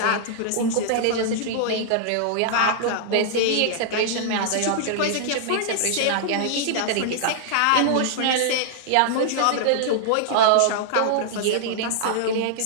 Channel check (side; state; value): both; different; correlation -0.01